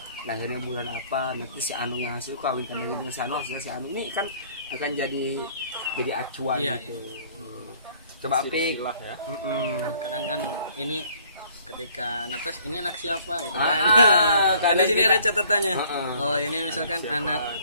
lahirnya bulan apa, nanti si Anu yang hasil kawin dengan si Anu, hasilnya si Anu. Ini kan akan jadi acuan Iya, gitu. Coba Pik. Silsilah ya. Kadang kan ini ketika netes ini anak siapa gitu kan. Ah, Kan di sini kita- ada catatannya. Heeh. Oh, ini misalkan anak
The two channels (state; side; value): inverted; both; correlation -0.58